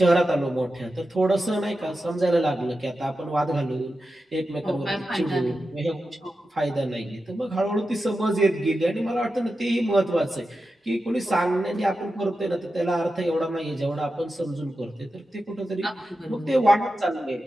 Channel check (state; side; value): normal; both; correlation 0.91